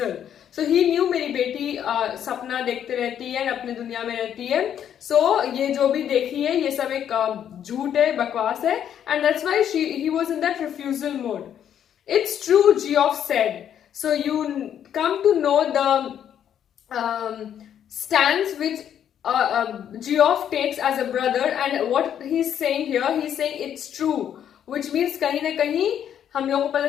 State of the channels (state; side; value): quieter; right; 9.5 dB